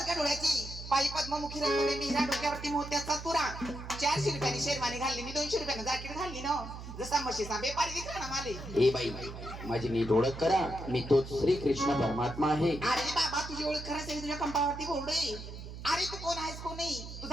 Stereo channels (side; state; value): right; noise; hum, 11 dB below the sound